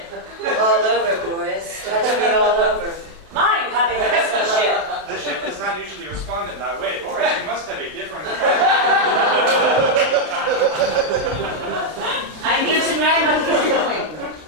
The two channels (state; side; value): late; left; 32 ms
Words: All over, boys. Touch me all over. Mine having a rescue ship. The ship does not usually respond in that way. Or you must have a different I need to know what you're doing.